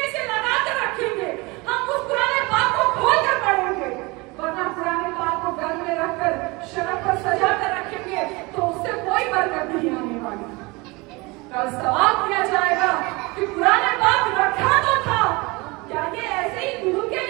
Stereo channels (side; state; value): left; quieter; 25.0 dB